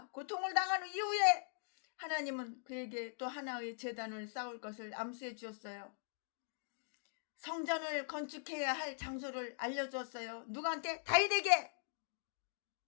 고통을 당한 이후에 하나님은 그에게 또 하나의 제단을 쌓을 것을 암시해 주었어요. 성전을 건축해야 할 장소를 알려주었어요. 누구한테? 다윗에게.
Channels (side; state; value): right; silent; digital silence